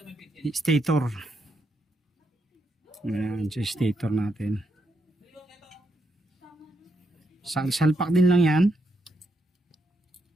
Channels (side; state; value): both; normal; correlation 0.79